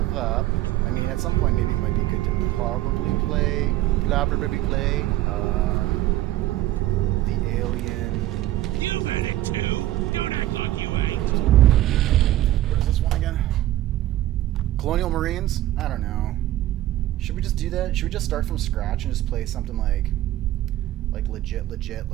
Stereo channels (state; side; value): quieter; left; 14.9 dB